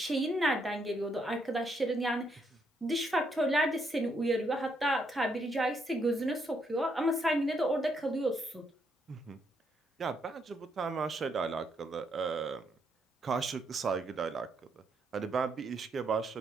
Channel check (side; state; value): both; normal; correlation 0.76